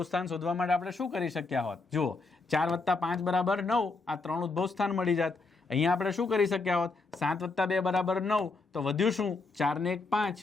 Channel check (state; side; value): quieter; right; 3.8 dB